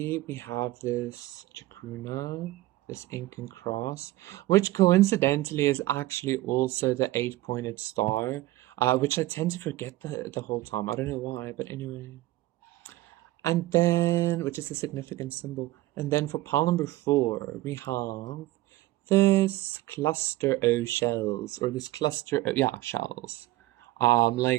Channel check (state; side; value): quieter; left; 17.2 dB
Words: we have this chacruna, this Incan cross, which coincidentally is actually also the 8-pointed star, which I tend to forget the whole time. I don't know why, but anyway. And then, which is a significant symbol. And then for pile number 4, we have this cluster O shells, or this cluster, shells.